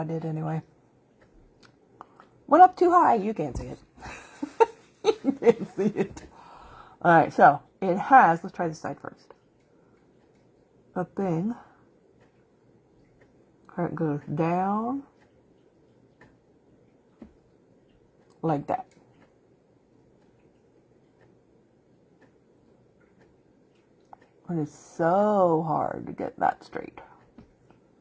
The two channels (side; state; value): both; identical; correlation 1.00